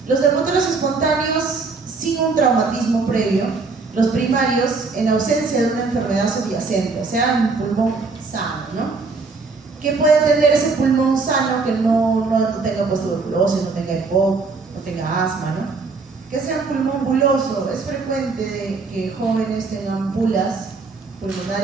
Los neumotórax espontáneos sin un traumatismo previo, los primarios en ausencia de una enfermedad subyacente, o sea, un pulmón sano, ¿no? ¿Qué puede tener ese pulmón sano que no tenga pues, tuberculosis, no tenga EPOC, no tenga asma, ¿no? Que sea un pulmón buloso. Es frecuente que jóvenes tengan bulas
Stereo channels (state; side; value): quieter; left; 4.2 dB